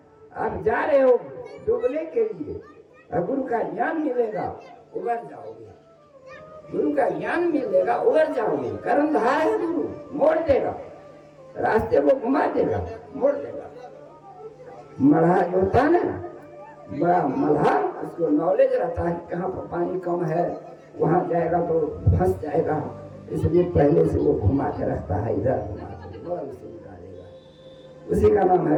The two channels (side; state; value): both; identical; correlation 1.00